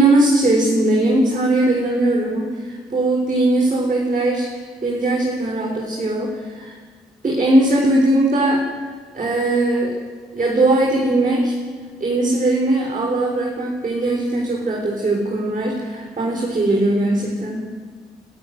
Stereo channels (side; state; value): both; normal; correlation 0.68